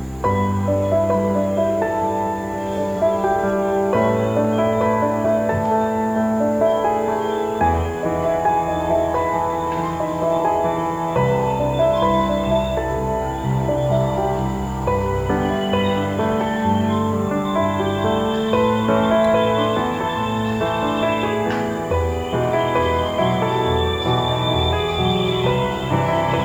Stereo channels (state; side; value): noise; right; hiss, 28 dB below the sound